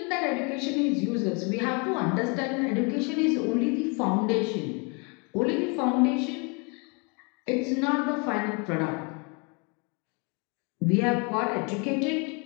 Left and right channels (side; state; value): right; quieter; 33.0 dB